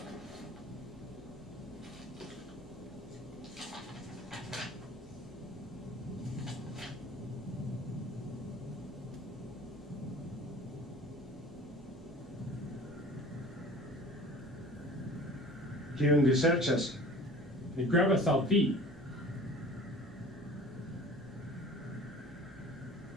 Kiun vi serĉas? Ni gravas al vi.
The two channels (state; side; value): normal; both; correlation 0.44